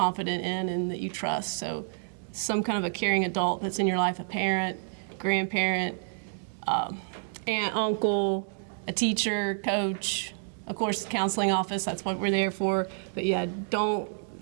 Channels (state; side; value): silent; left; digital silence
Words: in and that you trust. So some kind of a caring adult that's in your life, a parent, grandparent, aunt, uncle, a teacher, coach, of course, the counseling office, that's what we're there for. But yeah, don't